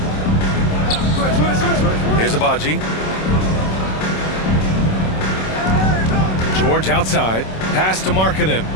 Here's Abaji. George outside. Pass to Markkanen.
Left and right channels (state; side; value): late; right; 27 ms